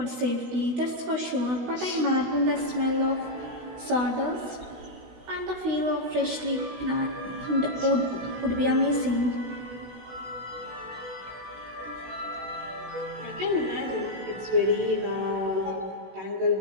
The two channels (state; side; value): late; left; 16 ms